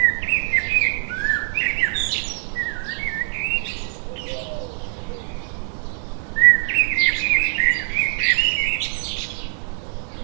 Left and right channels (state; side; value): silent; left; digital silence